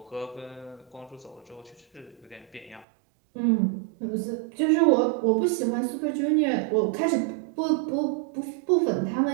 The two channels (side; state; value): left; drops out; at 2.9 s